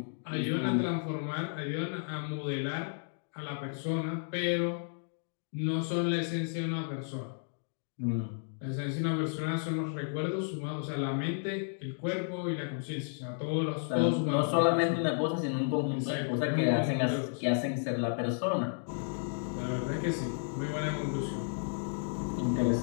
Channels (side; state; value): right; silent; digital silence